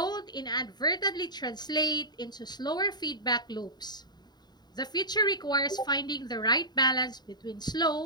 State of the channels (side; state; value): right; late; 0.20 ms